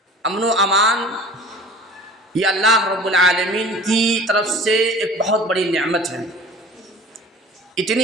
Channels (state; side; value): normal; both; correlation 0.43